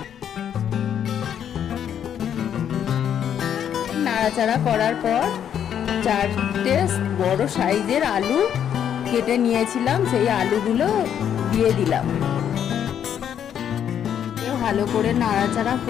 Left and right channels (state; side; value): quieter; right; 9.1 dB